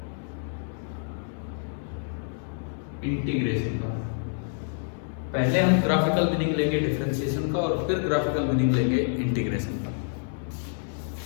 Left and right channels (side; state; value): right; silent; 60 dB below the other